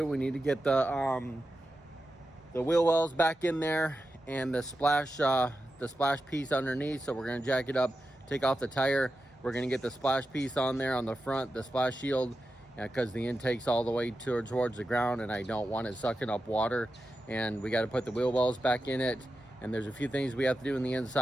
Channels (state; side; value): normal; both; correlation 0.91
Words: We need to get the wheel wells back in there and the splash piece underneath. So we're gonna jack it up, take off the tire. We're gonna get the splash piece on there on the front, the splash shield, because the intake's all the way towards the ground and I don't want it sucking up water. And we gotta put the wheel wells back in it. And there's a few things we have to do on the